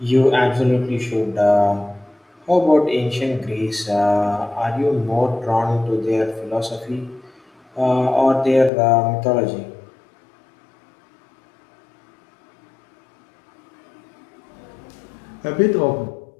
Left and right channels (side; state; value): right; drops out; at 8.7 s